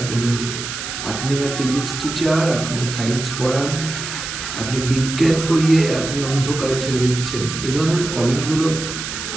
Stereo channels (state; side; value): noise; right; hiss, 7 dB below the sound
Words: আপনি না ফিজিক্স টিচার, আপনি না সায়েন্স পড়ান, আপনি বিজ্ঞান পড়িয়ে আপনি অন্ধকারে ঠেলে দিচ্ছেন, এই ধরনের কমেন্টগুলো